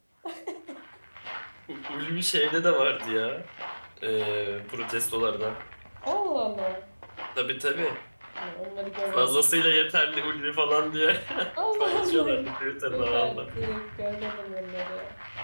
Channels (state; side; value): inverted; both; correlation -1.00